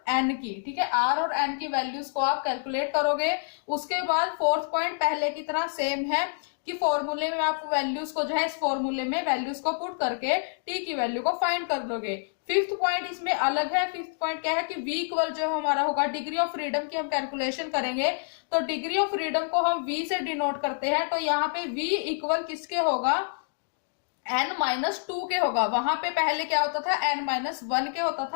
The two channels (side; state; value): right; silent; digital silence